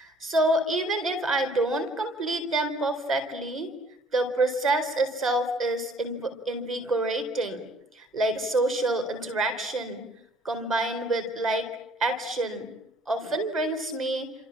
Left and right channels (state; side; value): normal; both; correlation 0.57